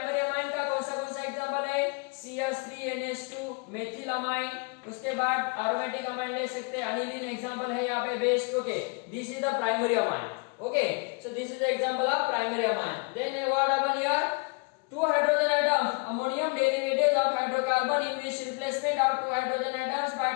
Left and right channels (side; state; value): right; quieter; 32.9 dB